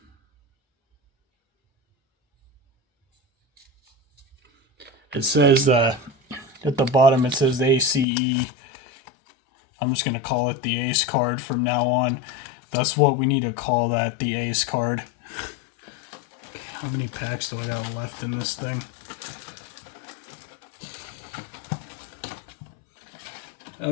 It says at the bottom it says ACE. I'm just gonna call it the Ace card from now on. That's what we need to call that, the Ace card. How many packs do I got left in this thing?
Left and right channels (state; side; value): drops out; right; at 8.1 s